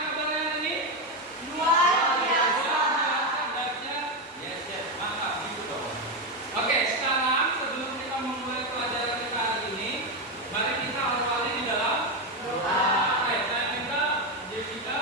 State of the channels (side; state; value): both; normal; correlation 0.09